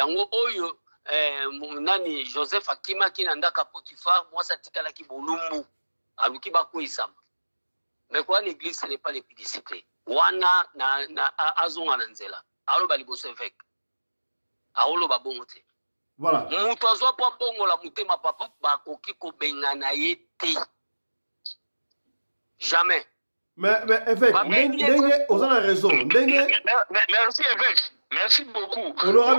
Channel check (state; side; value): inverted; both; correlation -1.00